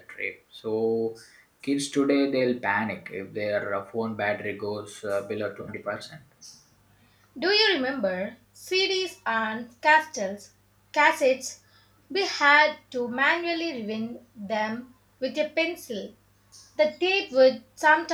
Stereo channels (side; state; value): both; identical; correlation 1.00